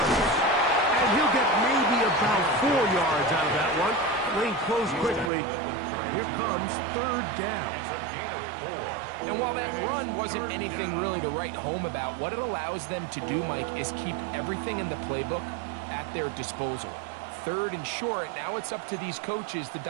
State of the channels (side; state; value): left; drops out; at 5.3 s